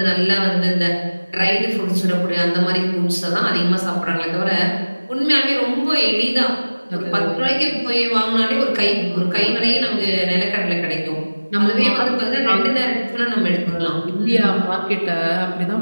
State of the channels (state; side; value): inverted; both; correlation -1.00